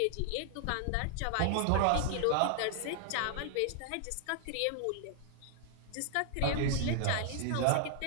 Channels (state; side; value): different; both; correlation 0.00